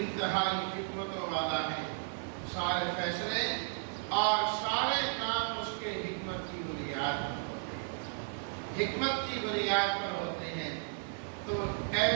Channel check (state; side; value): silent; left; digital silence